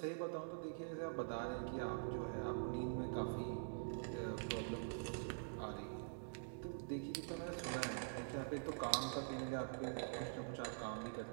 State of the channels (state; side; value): silent; left; digital silence